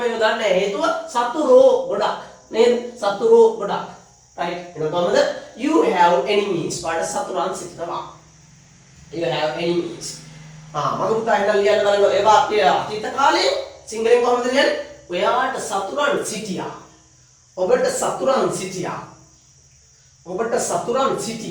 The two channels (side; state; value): both; identical; correlation 1.00